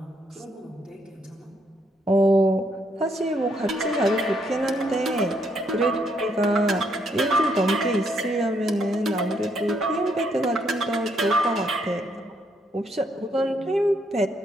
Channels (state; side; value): normal; both; correlation 0.73